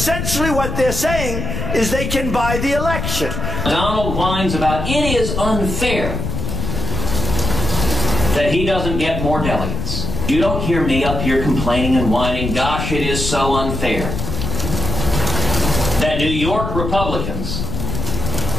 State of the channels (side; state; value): left; noise; rumble, 3 dB below the sound